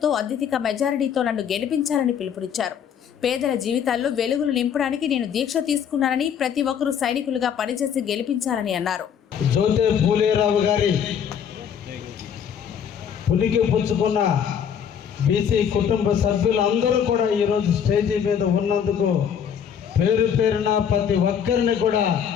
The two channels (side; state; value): right; quieter; 8.1 dB